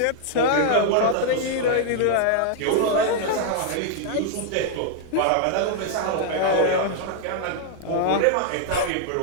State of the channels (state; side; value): different; both; correlation -0.01